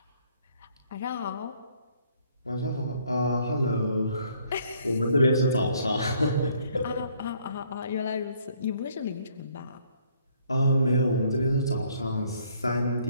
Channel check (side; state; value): both; inverted; correlation -0.65